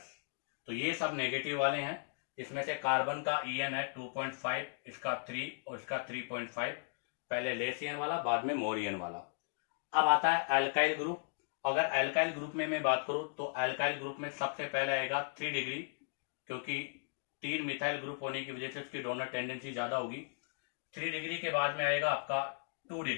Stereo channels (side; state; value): right; silent; digital silence